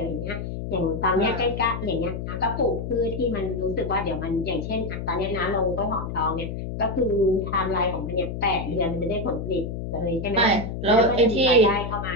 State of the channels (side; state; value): left; noise; hum, 6 dB below the sound